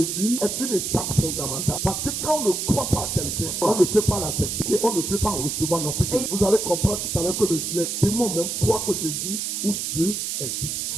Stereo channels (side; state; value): right; noise; hiss, 2 dB below the sound